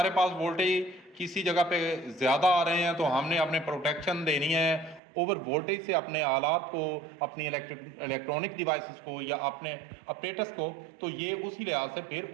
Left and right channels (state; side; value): drops out; left; at 5.0 s